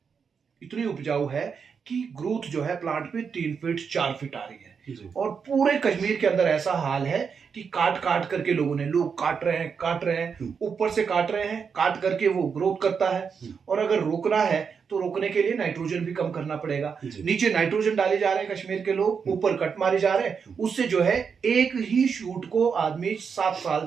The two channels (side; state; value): left; quieter; 6.2 dB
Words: इतनी उपजाऊ है कि ग्रोथ जो है प्लांट पे 3 फीट 4 फीट आ रही है। और पूरे कश्मीर के अंदर ऐसा हाल है कि काट काट करके लोग काट रहे हैं, ऊपर से काट रहे हैं, काट करके वो ग्रोथ करता है। और अगर रोकना है तो रोकने के लिए नाइट्रोजन भी कम करना पड़ेगा। नीचे नाइट्रोजन डाले जा रहे हैं कश्मीर के लोग, ऊपर कट मारे जा रहे हैं, उससे जो है एक ही शूट को आदमी 7 साल